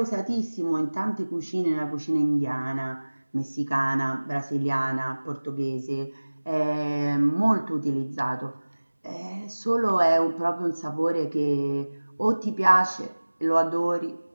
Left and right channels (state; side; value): inverted; both; correlation -1.00